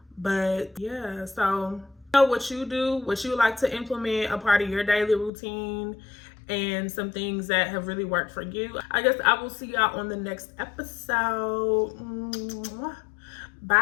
But yeah, so know what you do, what you like to implement, a part of your daily routine, and some things that have really worked for you. I guess I will see y'all on the next episode.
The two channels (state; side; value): drops out; right; at 5.3 s